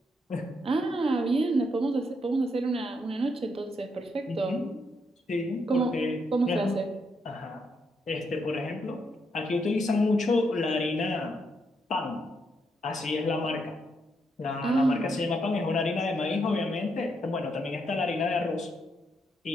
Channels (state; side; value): normal; both; correlation 0.78